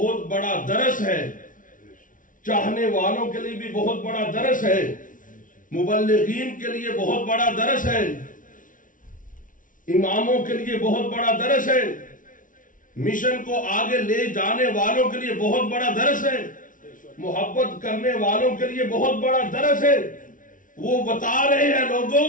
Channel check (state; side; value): late; right; 0.38 ms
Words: بڑا درس ہے، چاہنے والوں کے لیے بھی بہت بڑا درس ہے، مبلغین کے لیے بہت بڑا درس ہے، اماموں کے لیے بہت بڑا درس ہے، مشن کو آگے لے جانے والوں کے لیے بہت بڑا درس ہے، محبت کرنے والوں کے لیے بہت بڑا درس ہے. وہ بتا رہے ہیں لوگوں،